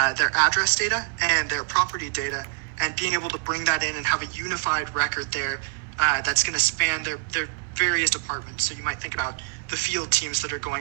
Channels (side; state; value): left; quieter; 34.7 dB